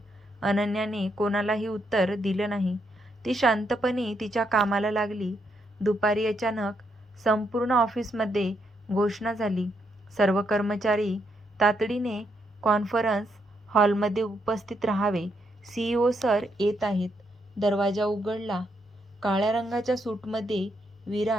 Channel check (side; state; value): both; normal; correlation 0.78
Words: अनन्याने कोणालाही उत्तर दिलं नाही. ती शांतपणे तिच्या कामाला लागली. दुपारी अचानक संपूर्ण ऑफिसमध्ये घोषणा झाली. सर्व कर्मचारी तातडीने कॉन्फरन्स हॉलमध्ये उपस्थित राहावे. CEO सर येत आहेत. दरवाजा उघडला. काळ्या रंगाच्या सूटमध्ये